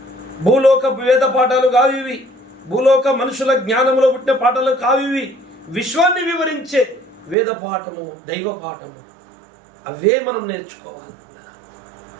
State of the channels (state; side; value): drops out; left; at 7.4 s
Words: భూలోక వేద పాఠాలు కావివి, భూలోక మనుషుల జ్ఞానంలో పుట్టిన పాఠాలు కావివి. విశ్వాన్ని వివరించే వేద పాఠము, దైవ పాఠము, అవే మనం నేర్చుకోవాలి.